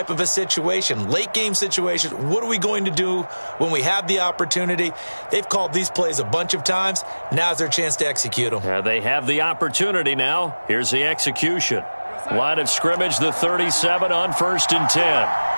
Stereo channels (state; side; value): inverted; both; correlation -1.00